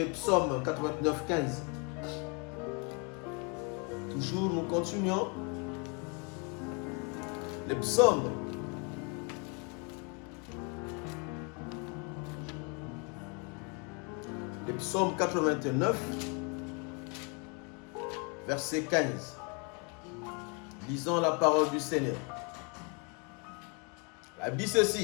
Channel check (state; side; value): quieter; right; 34.0 dB